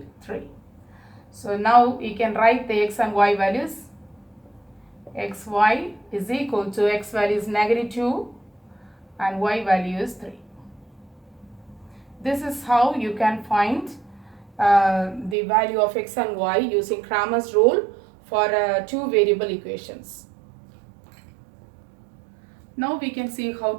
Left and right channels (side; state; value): left; drops out; at 15.4 s